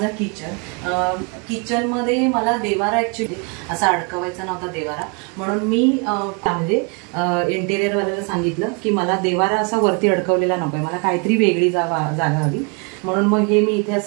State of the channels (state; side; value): quieter; left; 34.4 dB